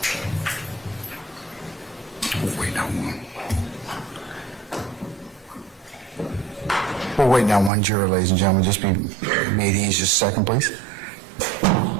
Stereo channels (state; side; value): drops out; left; at 7.7 s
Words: We're waiting on one. We're waiting on one juror, ladies and gentlemen. Just be made easy. Just a second, please.